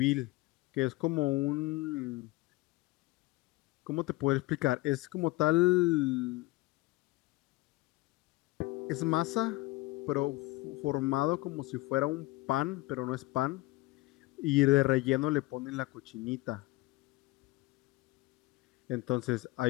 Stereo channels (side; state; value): right; quieter; 20.4 dB